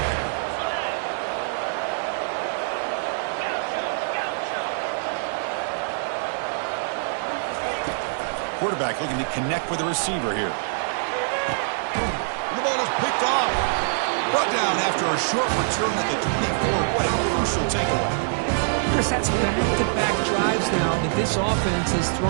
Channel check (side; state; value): left; silent; digital silence